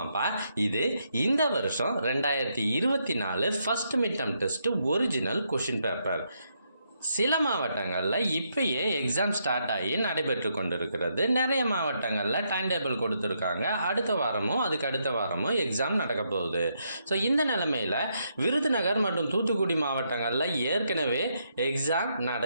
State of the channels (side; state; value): both; inverted; correlation -0.78